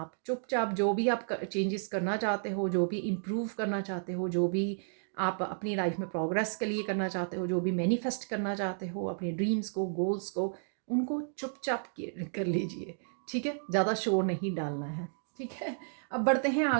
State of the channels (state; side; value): silent; left; digital silence